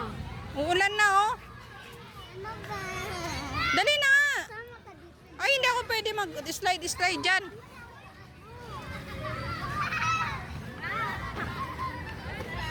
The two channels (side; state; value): both; identical; correlation 1.00